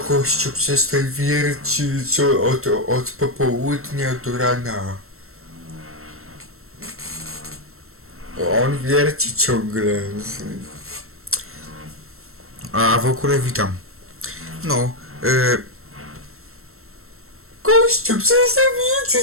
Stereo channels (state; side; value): late; left; 0.62 ms